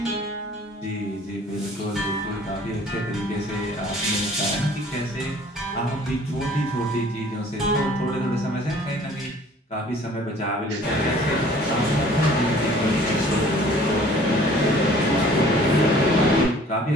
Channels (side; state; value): both; normal; correlation 0.52